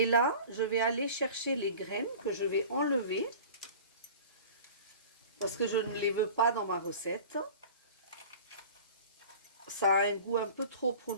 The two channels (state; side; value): inverted; both; correlation -0.41